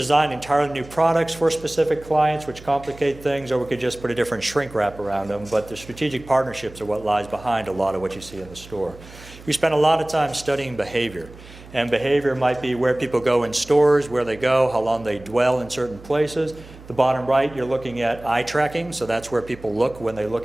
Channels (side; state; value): right; noise; hum, 19 dB below the sound